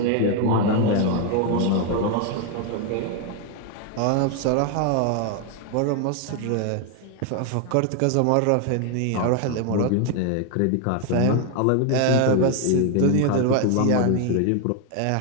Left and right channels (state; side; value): different; both; correlation 0.01